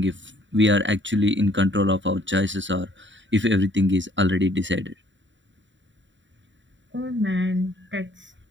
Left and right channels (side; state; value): left; late; 0.54 ms